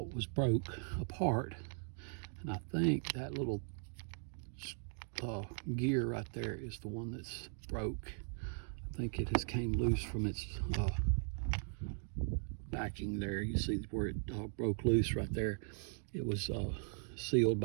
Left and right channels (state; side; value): silent; left; 52 dB below the other